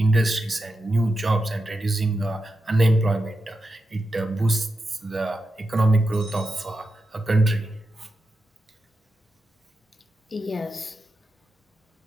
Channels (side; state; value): both; normal; correlation 0.88